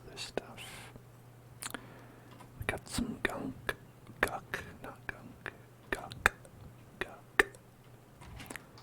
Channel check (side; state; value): both; identical; correlation 1.00